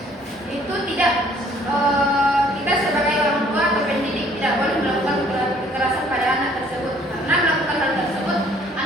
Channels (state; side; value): normal; both; correlation 0.59